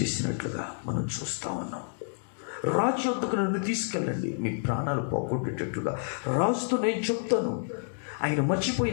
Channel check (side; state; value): right; silent; digital silence